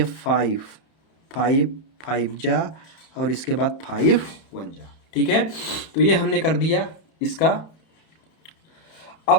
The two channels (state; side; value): late; right; 31 ms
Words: 5 5 5 जा, और इसके बाद 5 1 जा, ठीक है। तो ये हमने कर दिया इसका।